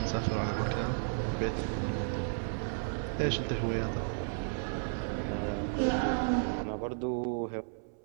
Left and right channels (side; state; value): left; silent; 56 dB below the other